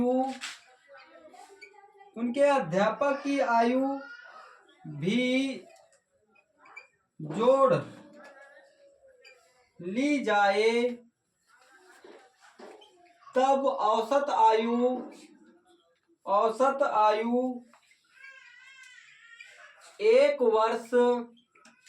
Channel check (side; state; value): both; identical; correlation 1.00